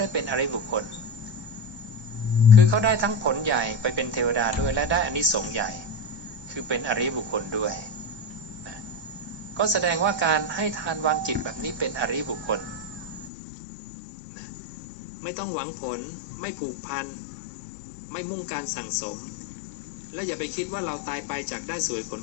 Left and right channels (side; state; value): right; drops out; at 13.3 s